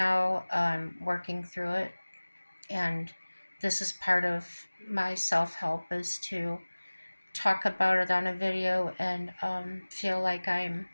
I'm working through it, and this is part of my self-help is to talk about it on a video and feel like I'm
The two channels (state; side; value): inverted; both; correlation -1.00